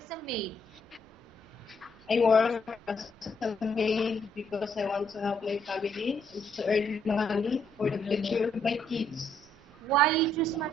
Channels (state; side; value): normal; both; correlation 0.71